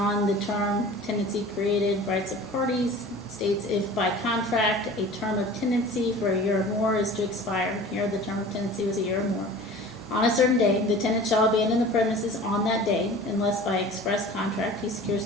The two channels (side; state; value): both; normal; correlation 0.41